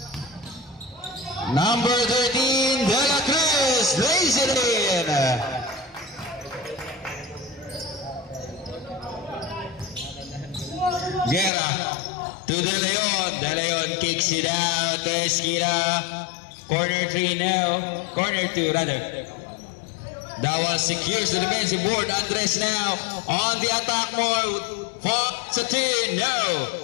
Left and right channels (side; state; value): right; drops out; at 11.5 s